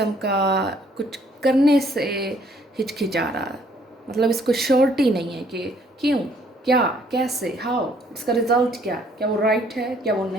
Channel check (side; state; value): both; normal; correlation 0.63